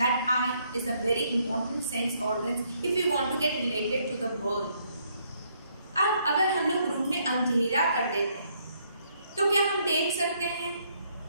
that eye is a very important sense organ if you want to get related to the world. अब अगर हम लोग रूम में अंधेरा कर देते हैं तो क्या हम देख सकते हैं?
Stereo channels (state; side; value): inverted; both; correlation -0.70